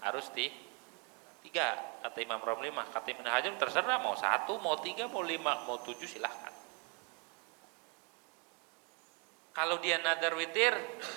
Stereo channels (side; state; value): left; quieter; 33.1 dB